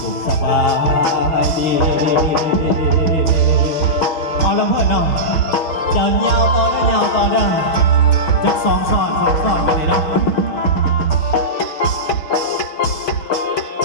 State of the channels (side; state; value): right; late; 6.4 ms